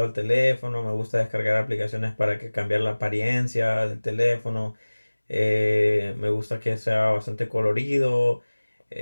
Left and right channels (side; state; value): both; inverted; correlation -1.00